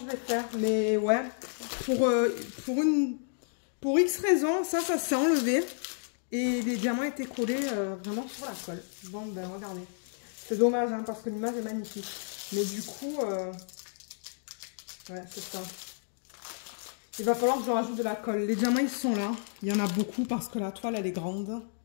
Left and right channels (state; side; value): silent; right; digital silence